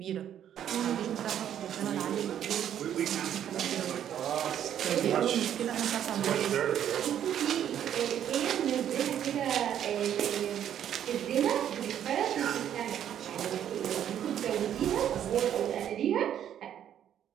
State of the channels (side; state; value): left; quieter; 10.1 dB